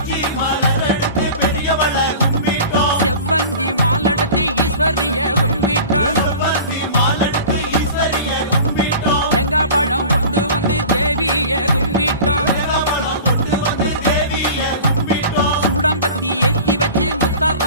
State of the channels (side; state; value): both; inverted; correlation -0.38